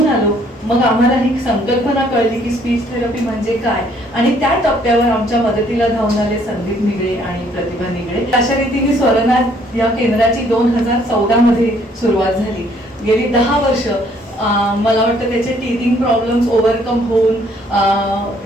आलो. मग आम्हाला ही संकल्पना कळली की स्पीच थेरपी म्हणजे काय, आणि त्या टप्प्यावर आमच्या मदतीला धावून आले संदीप निगळे आणि प्रतिभा निगळे. अशा रीतीने स्वरनाथ या केंद्राची 2014 मध्ये सुरुवात झाली. गेली 10 वर्ष मला वाटतं त्याचे टीथिंग प्रॉब्लेम्स ओव्हरकम होऊन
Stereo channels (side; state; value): both; normal; correlation 0.64